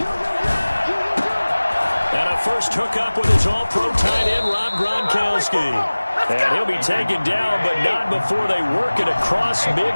And a first hookup with his all-pro tight end, Rob Gronkowski. And he'll be taken down, but not before they work it across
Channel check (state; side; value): inverted; both; correlation -1.00